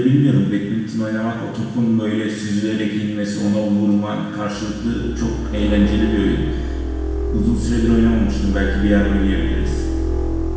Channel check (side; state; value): both; identical; correlation 1.00